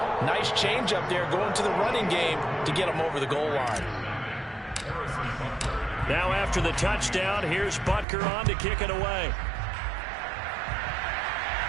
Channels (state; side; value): drops out; left; at 8.1 s